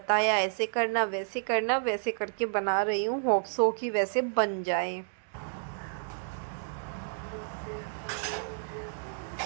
ऐसे करना वैसे करना, वैसे करके बना रही हूँ। होप सो कि वैसे बन जाए।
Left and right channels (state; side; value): silent; left; digital silence